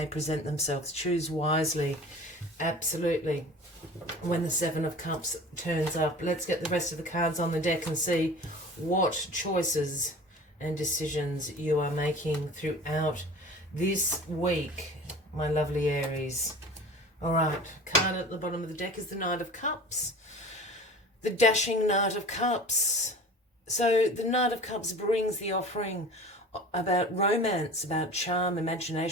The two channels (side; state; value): both; normal; correlation 0.40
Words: present themselves. Choose wisely. Absolutely. When the Seven of Cups turns up, let's get the rest of the cards on the deck and see what choices and decisions you are making throughout this week, my lovely Aries. All right, card at the bottom of the deck is the Knight of Cups, the dashing Knight of Cups. So the Knight of Cups brings the offering about romance, about charm,